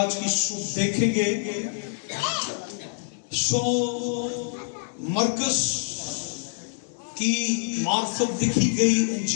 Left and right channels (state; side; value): silent; right; digital silence